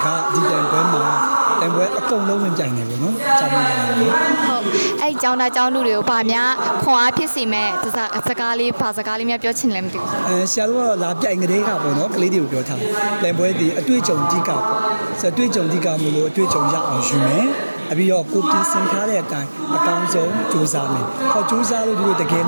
ကဒီပြိုင်ပွဲမှာပြိုင်ပွဲအကုန်လုံးဝင်ပြိုင်နေပေါ့နော်ကျောင်းသားတွေဟုတ်အဲ့ကျောင်းသားကျောင်းသူတွေကိုဗာများခွန်အားဖြစ်စေမဲ့စကားလေးဘာစကားလေးများပြောချင်လဲမသိဘူးဆရာတို့ကတော့လာပြိုင်ကလေးကပေါ့နော်ကလေးတွေကိုပြောထားပြိုင်ပွဲဒီအတွေ့အကြုံတိကပေါ့ဆိုအတွေ့အကြုံတိကမလို့အတွေ့အကြုံရအောင်ယူမယ်အပြီးတော့ကိုပြင်ဆင်ထားတဲ့အတိုင်းအကောင်းဆုံးစူးစမ်းမယ်။ဟောစူးစမ်းလို့ဒီလိုတကယ်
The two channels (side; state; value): both; inverted; correlation -1.00